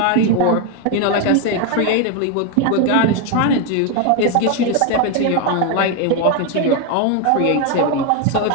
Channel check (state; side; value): different; both; correlation 0.01